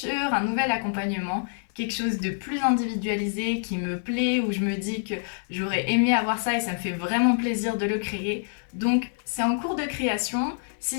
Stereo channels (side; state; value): right; silent; 57 dB below the other